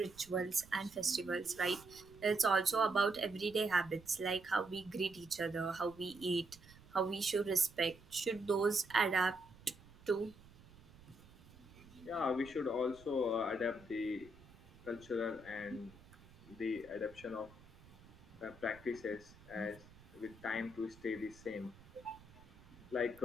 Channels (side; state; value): right; noise; rumble, 22 dB below the sound